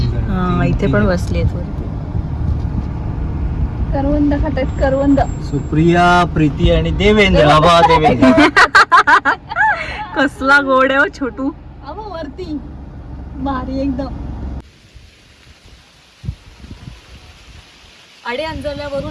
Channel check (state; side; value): identical; both; correlation 1.00